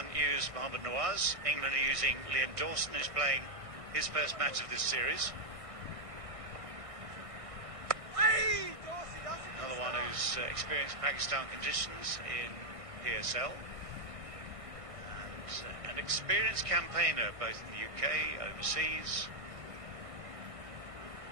used Mohammad Nawaz, England are using Liam Dawson, who's playing his first match of this series. Another one who's experienced Pakistan conditions in PSL. And an experienced campaigner both in the UK, overseas.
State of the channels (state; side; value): late; left; 1.5 ms